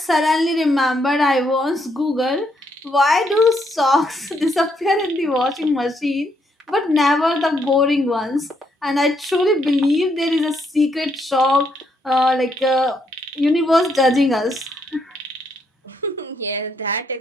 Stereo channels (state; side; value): normal; both; correlation 0.75